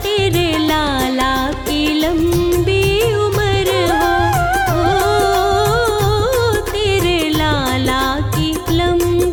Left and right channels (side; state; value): both; identical; correlation 1.00